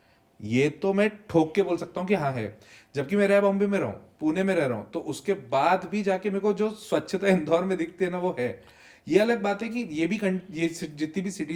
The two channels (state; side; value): identical; both; correlation 1.00